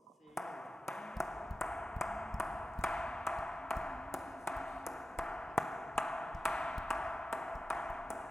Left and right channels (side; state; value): both; normal; correlation 0.93